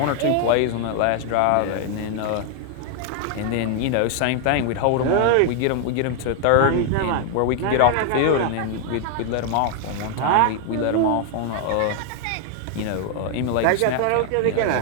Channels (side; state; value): both; different; correlation 0.00